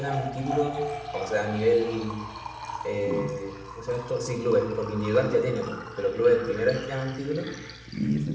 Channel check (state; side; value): identical; both; correlation 1.00